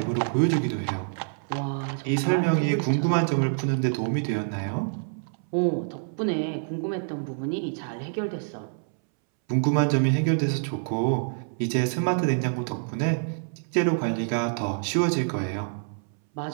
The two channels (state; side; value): silent; left; 60 dB below the other